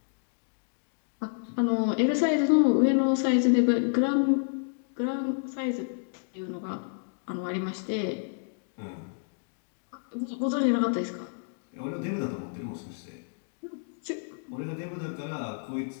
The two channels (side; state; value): right; silent; digital silence